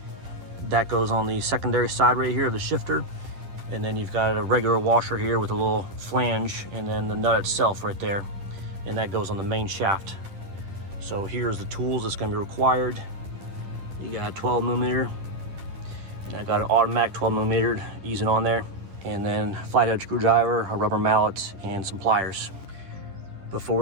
That goes on the secondary side right here of the shifter. And then you've got a regular washer here with a little flange, and then the nut itself right there, and that goes on the main shaft. So here's the tools that's going to be required. You got a 12mm, and I got an automatic 12mm easing on there, and then flathead screwdriver, a rubber mallet, and some pliers. Before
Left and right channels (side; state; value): left; late; 10 ms